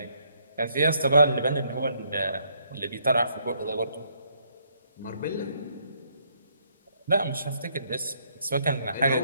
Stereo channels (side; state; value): both; inverted; correlation -0.71